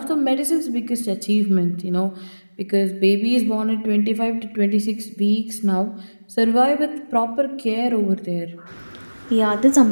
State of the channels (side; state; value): both; inverted; correlation -1.00